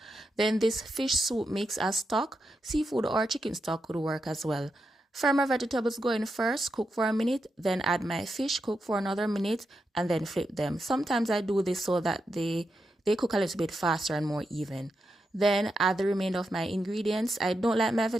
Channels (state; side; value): normal; both; correlation 0.86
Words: Then this fish soup makes a stock. Seafood or chicken stock could work as well. Fry my vegetables go in first, cook for a minute, then add my fish, cook for another minute, and then flip them. Sometimes I do this so that they cook a little bit faster and more even. Then add the remainder of my ingredients. I don't like my